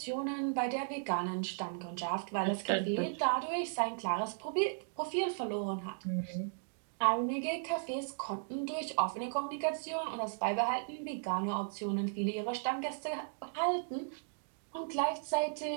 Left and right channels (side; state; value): left; silent; digital silence